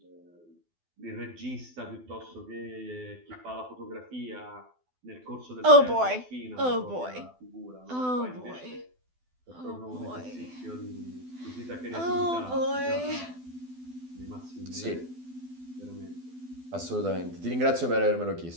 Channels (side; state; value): left; late; 12 ms